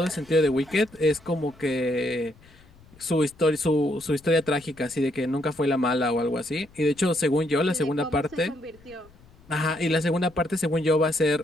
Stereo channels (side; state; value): left; noise; rumble, 26 dB below the sound